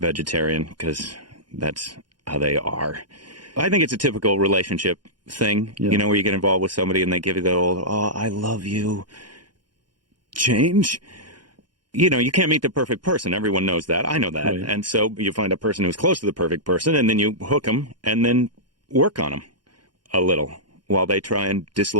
because that's how they are. I think it's a typical relationship thing, you know, where you get involved with somebody and they give you the old, oh, I love you, change. You know, you can't meet the perfect person. Everyone knows that. I know that. Right. And so you find a person who's close to the perfect person and then you hook them and then work on them a little while they try and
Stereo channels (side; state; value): left; late; 0.71 ms